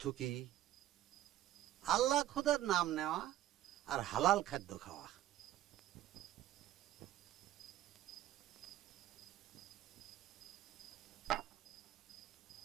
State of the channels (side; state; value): left; quieter; 13.3 dB